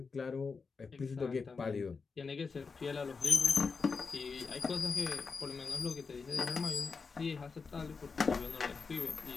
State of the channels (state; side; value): quieter; right; 4.9 dB